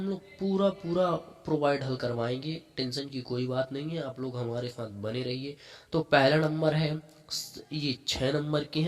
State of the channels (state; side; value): identical; both; correlation 1.00